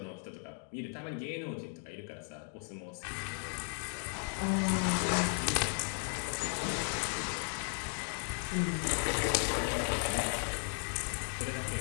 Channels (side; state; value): right; silent; 54 dB below the other